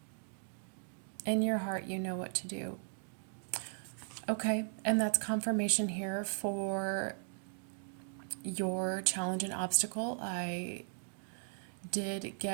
In your heart, you know what to do. Okay, and that's confirmation here for your challenge and obstacle. I did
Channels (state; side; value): silent; left; digital silence